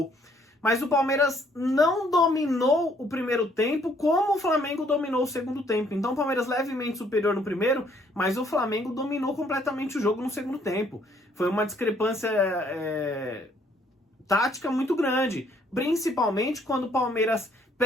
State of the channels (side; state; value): both; normal; correlation 0.65